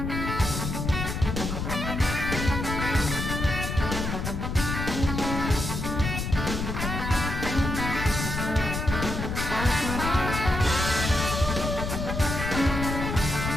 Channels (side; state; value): left; noise; rumble, 3 dB below the sound